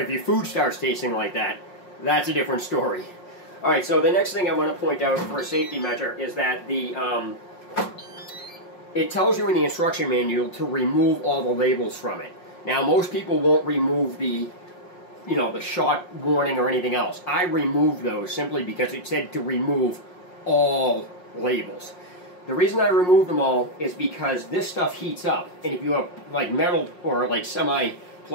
if your food starts tasting like that, that's a different story. All right, so the next thing I want to point out for a safety measure is that it tells you in the instruction manual to remove all the labels from it. Now, most people won't remove the the shot warning or anything else. I removed those simply because it said to remove all labels. The reason I removed them all is because this stuff heats up, and if you have like metal or like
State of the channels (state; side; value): late; right; 5.6 ms